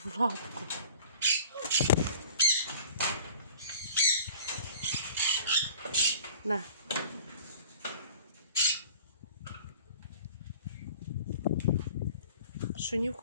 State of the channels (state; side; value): inverted; both; correlation -0.45